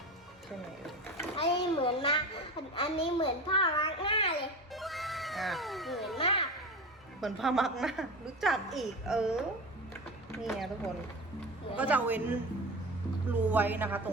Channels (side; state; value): both; normal; correlation 0.28